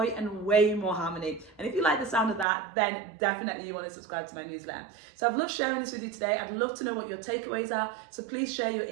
and way more harmony. And if you like the sound of that, then definitely you want to subscribe to my newsletter. So I've loved sharing this with you today. I'd love to know what your takeaways are. So please share your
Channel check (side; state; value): left; drops out; at 2.5 s